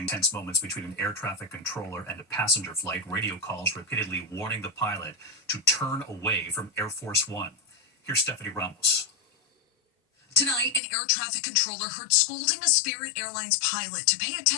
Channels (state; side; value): drops out; right; at 10.8 s